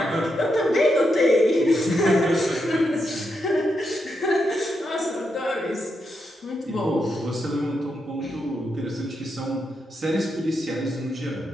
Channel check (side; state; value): both; normal; correlation 0.83